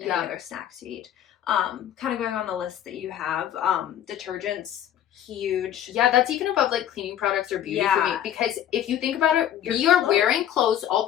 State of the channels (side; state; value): right; quieter; 10.8 dB